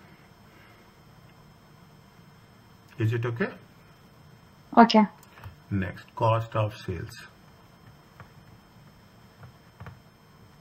Is it okay? Okay. Next, cost of sales.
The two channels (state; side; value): identical; both; correlation 1.00